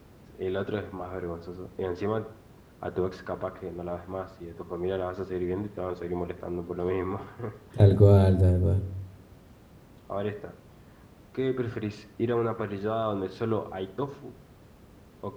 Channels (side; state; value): both; identical; correlation 1.00